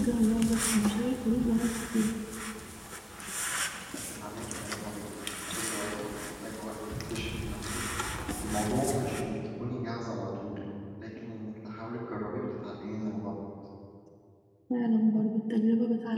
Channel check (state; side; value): identical; both; correlation 1.00